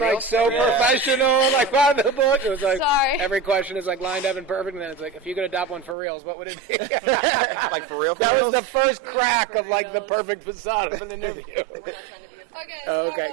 so professional, like by the book. It was like every question is like lined up and perfect, and then it's like, if you could adopt one for reals, what would it be? Like for real? That was the first crack of like the perfect facade of an interview. We're not trying to be a Okay, start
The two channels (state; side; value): drops out; left; at 6.0 s